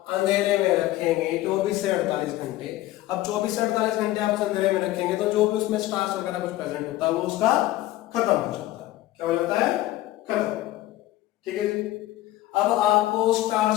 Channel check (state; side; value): quieter; right; 15.8 dB